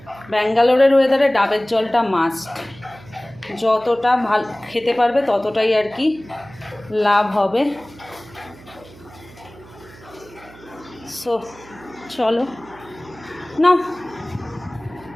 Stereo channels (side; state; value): right; noise; hum, 21 dB below the sound